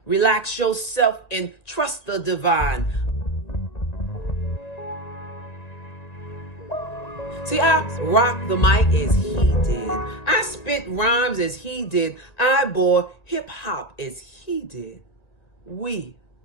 Relax yourself and trust the divine. See, I rock the mic as he did. I spit rhymes as he did. I bore hip hop as he did. We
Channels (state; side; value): late; right; 1.8 ms